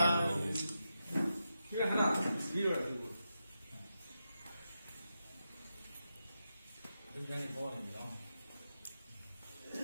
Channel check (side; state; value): both; inverted; correlation -0.88